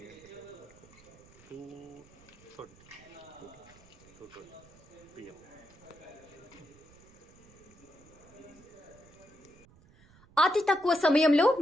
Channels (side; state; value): right; noise; rumble, 24 dB below the sound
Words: 2:20 PM. అతి తక్కువ సమయంలో